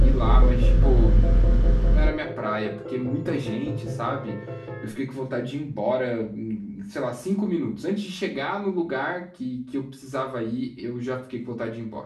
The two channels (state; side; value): identical; both; correlation 1.00